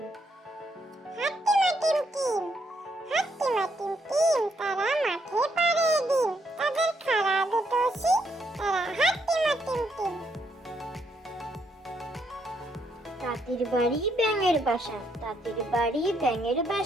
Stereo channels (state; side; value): normal; both; correlation 0.75